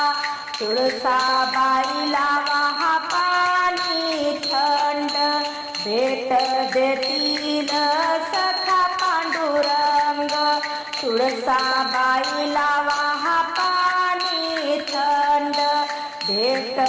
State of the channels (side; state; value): both; identical; correlation 1.00